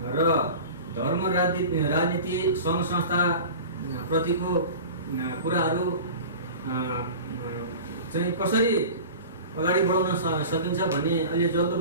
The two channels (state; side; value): inverted; both; correlation -0.36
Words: र धर्म राजनीति सङ्घ संस्था प्रतिको कुराहरू चाहिँ कसरी अगाडि बढाउन सकिन्छ भन्ने अलि